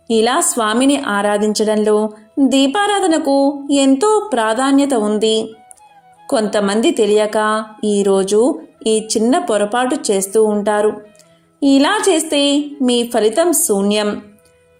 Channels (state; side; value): identical; both; correlation 1.00